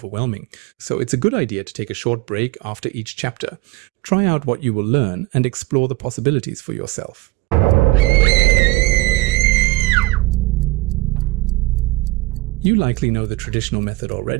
so it's a good idea to take a short break after each chapter. Try out what you will learn and explore the possibilities for yourself. You likely know the traditional method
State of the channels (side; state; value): left; quieter; 21.5 dB